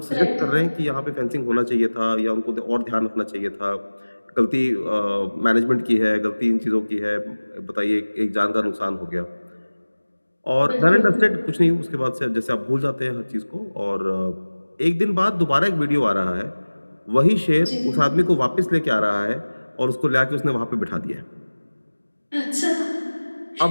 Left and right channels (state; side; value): inverted; both; correlation -1.00